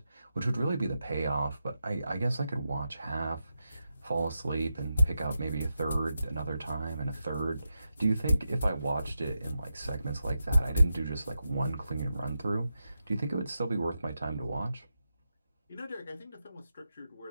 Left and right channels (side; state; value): both; inverted; correlation -0.88